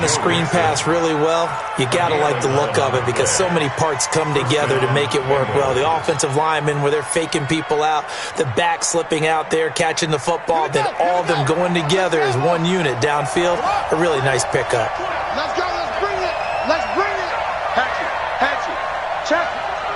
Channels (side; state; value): both; identical; correlation 1.00